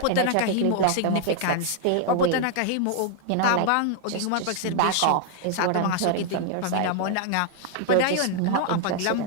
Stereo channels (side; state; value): both; different; correlation 0.00